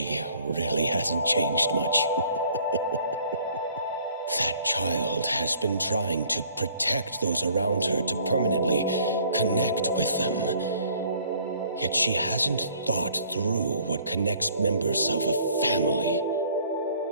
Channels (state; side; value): inverted; both; correlation -0.57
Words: really hasn't changed much. That child has been trying to protect those around her to permanently connect with them. Yet she hasn't thought through what connects members of a family.